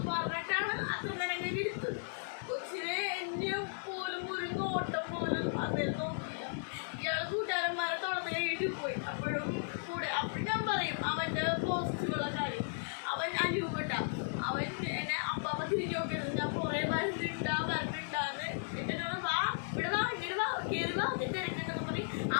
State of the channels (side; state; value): right; silent; digital silence